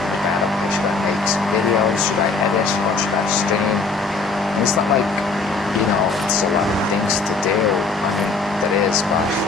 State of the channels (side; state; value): right; quieter; 4.0 dB